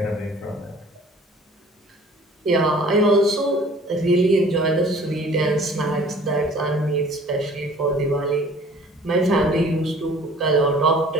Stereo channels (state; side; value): normal; both; correlation 0.50